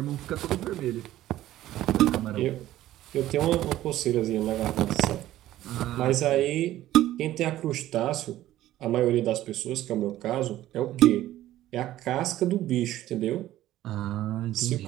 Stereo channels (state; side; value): quieter; left; 14.2 dB